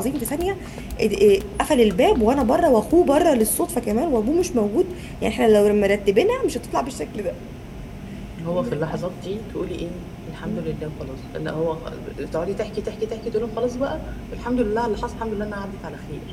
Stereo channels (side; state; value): both; identical; correlation 1.00